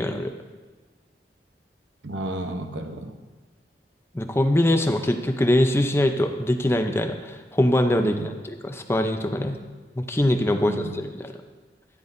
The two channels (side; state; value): both; normal; correlation 0.86